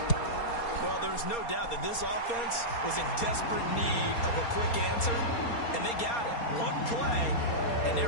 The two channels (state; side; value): late; right; 4.3 ms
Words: Well, there's no doubt that this offense was in desperate need of a quick answer, and they got it. One play, and